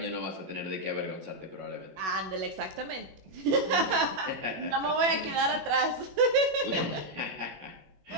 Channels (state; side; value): late; left; 21 ms